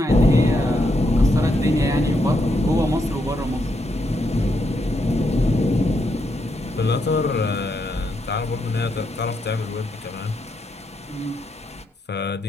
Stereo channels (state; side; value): normal; both; correlation 0.80